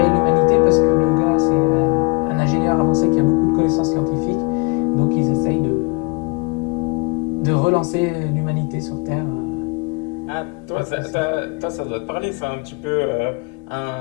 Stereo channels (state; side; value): quieter; right; 31.1 dB